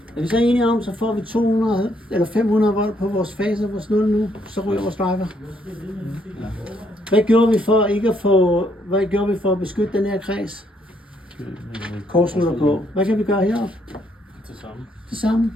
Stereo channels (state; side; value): normal; both; correlation 0.71